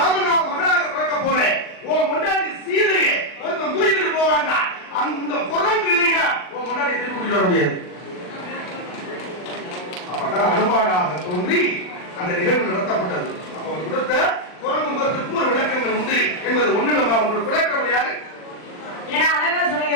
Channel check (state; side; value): late; right; 39 ms